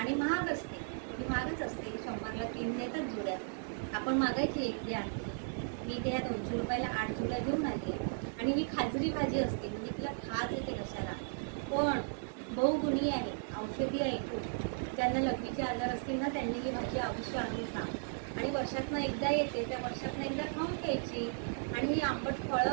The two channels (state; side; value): silent; left; digital silence